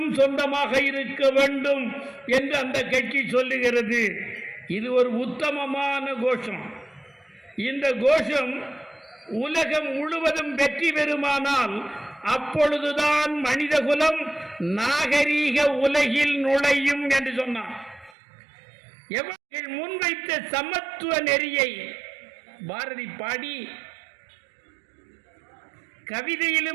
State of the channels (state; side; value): drops out; left; at 18.1 s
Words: சொந்தமாக இருக்க வேண்டும் என்று அந்த கட்சி சொல்லுகிறது. இது ஒரு உத்தமமான கோஷம். இந்த கோஷம் உலகம் முழுவதும் வெற்றி பெறுமானால் அப்பொழுதுதான் மனிதகுலம் நாகரீக உலகில் நுழையும் என்று சொன்னார். எவர்கள் முன்வைத்த சமத்துவ நெறியை பாரதி பாடி,